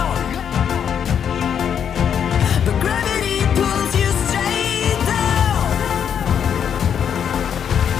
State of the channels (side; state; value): right; quieter; 8.2 dB